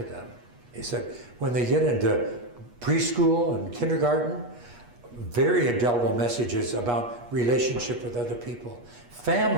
them." He said, when they get into preschool and kindergarten, very indelible messages about relationship with other people.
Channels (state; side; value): late; left; 8.3 ms